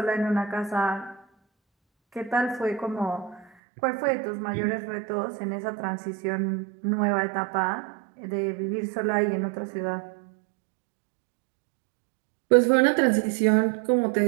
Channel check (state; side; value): drops out; left; at 3.5 s